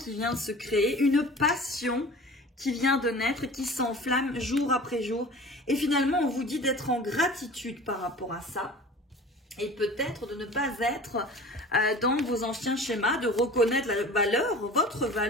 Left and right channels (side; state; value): both; normal; correlation 0.41